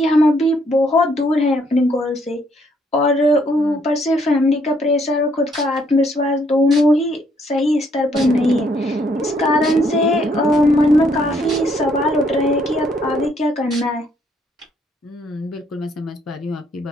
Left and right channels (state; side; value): normal; both; correlation 0.69